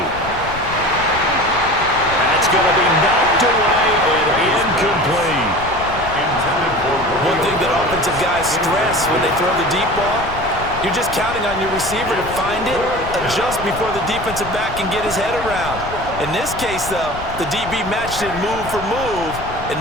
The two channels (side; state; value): left; noise; rumble, 12 dB below the sound